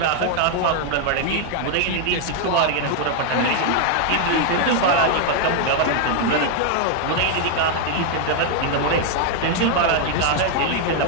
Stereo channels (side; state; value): both; different; correlation 0.00